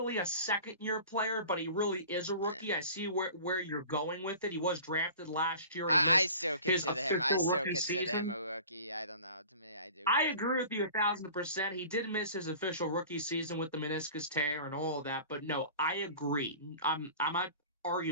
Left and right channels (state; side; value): inverted; both; correlation -0.42